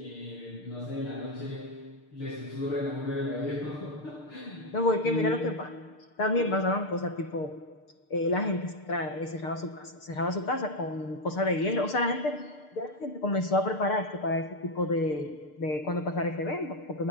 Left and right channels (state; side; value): late; right; 6.7 ms